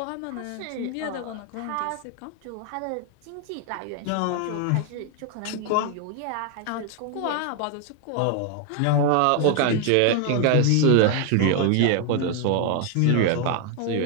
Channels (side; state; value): both; different; correlation 0.00